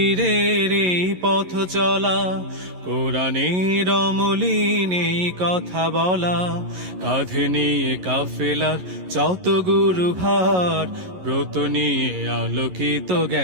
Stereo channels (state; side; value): late; left; 11 ms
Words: এই পথ চলা, কোরআনের অমলিন এই কথা বলা, কাঁধে নিয়ে কাফেলার যত গুরু ভার, ব্রত নিয়ে আলোকিত